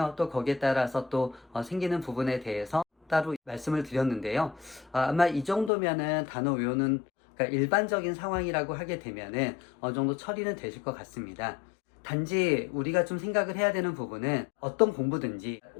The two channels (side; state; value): right; drops out; at 5.7 s